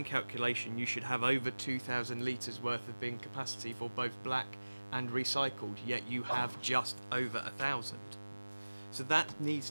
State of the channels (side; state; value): both; inverted; correlation -1.00